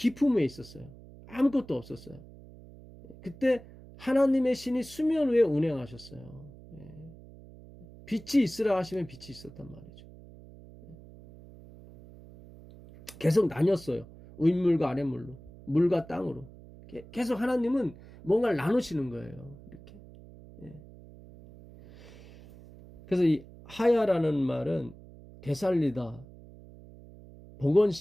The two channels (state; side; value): noise; right; hum, 19 dB below the sound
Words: 있었어요. 아무것도 없었어요. 그때 하나님의 신이 수면 위에 운행하셨어요. 빛이 있으라 하시면 빛이 있었단 말이죠. 계속 나뉘었어요. 윗물과 아랫물로, 물과 땅으로. 계속 하나님은 뭔가를 나누시는 거예요. 이렇게. 그래서 이 하야라는 말은 되살리다,